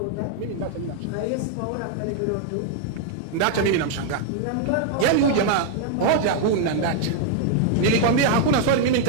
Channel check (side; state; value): both; different; correlation 0.00